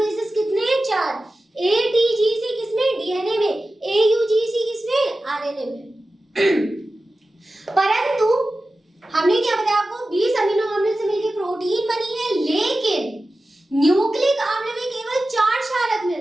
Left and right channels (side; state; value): both; normal; correlation 0.94